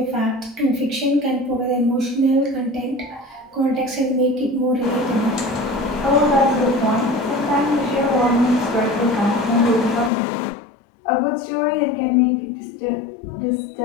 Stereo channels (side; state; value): right; drops out; at 10.1 s